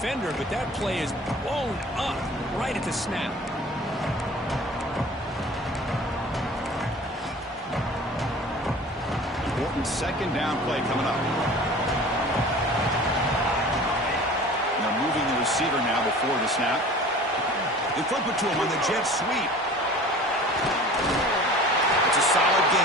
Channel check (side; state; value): both; normal; correlation 0.43